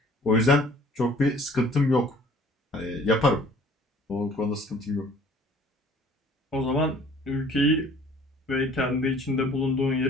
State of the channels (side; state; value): both; normal; correlation 0.53